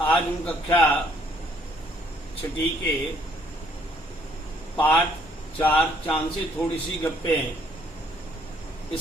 आज हम कक्षा छठी के पाठ 4 चांद से थोड़ी सी गप्पें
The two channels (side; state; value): both; normal; correlation 0.65